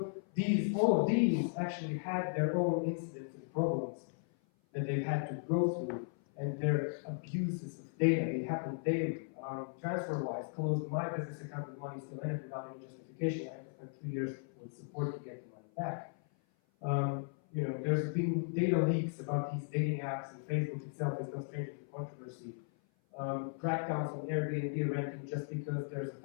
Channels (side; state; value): right; silent; 53 dB below the other